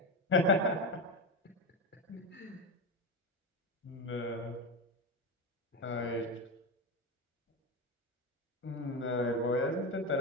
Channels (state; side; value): normal; both; correlation 0.16